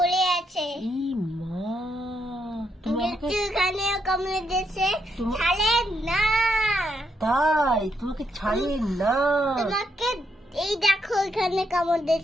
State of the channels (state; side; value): normal; both; correlation 0.78